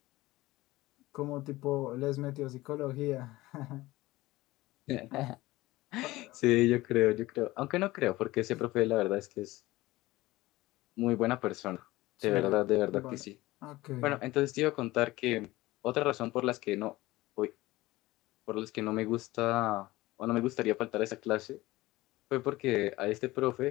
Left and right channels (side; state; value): right; quieter; 18.7 dB